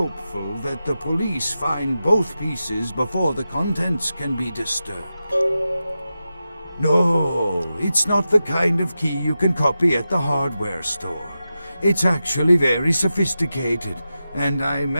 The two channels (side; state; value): both; inverted; correlation -0.92